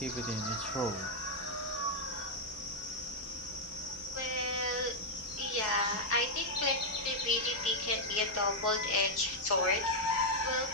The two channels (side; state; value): both; normal; correlation -0.03